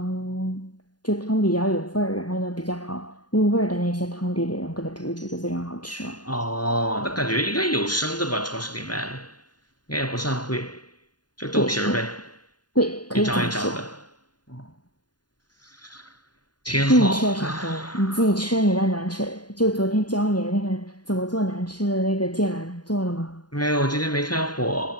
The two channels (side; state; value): right; late; 0.70 ms